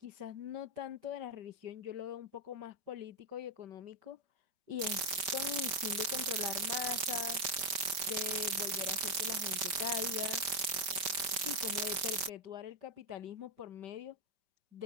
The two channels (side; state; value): left; late; 5.1 ms